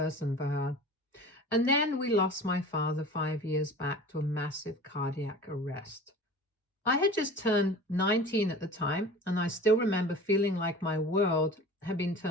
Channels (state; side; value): normal; both; correlation 0.39